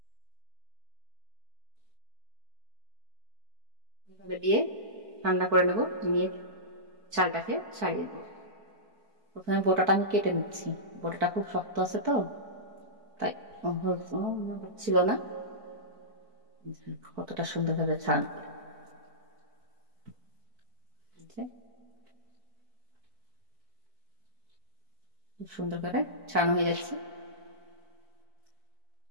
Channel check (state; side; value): late; left; 4.6 ms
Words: এভাবে দিয়ে ঠান্ডা করে নেব, নিয়ে চালটাকে ছাড়িয়ে দেবো। প্রথমে বোটাটা আমি কেটে নিচ্ছি, বোটাটা খুব শক্ত আছে তো, তাই ছিল না। কতটা সুন্দরভাবে ছাড়ানো করে, খুব সুন্দর করে ছাড়ানো হয়ে যাচ্ছে।